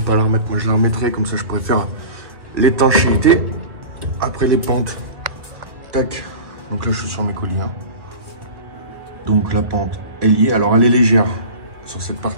la remettre, moi je la remettrai. Comme ça, je pourrais faire l'étanchéité. Après les pentes. Tac. Donc là, je suis sur mes colliers. Hein. Donc la pente, elle y est. Alors, elle est légère sur cette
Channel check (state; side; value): late; left; 1.4 ms